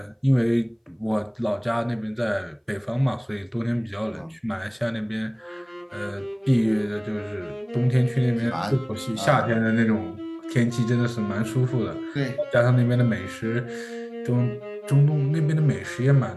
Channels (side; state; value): both; identical; correlation 1.00